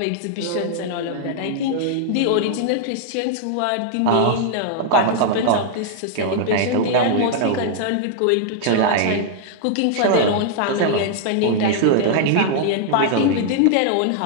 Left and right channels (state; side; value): different; both; correlation -0.01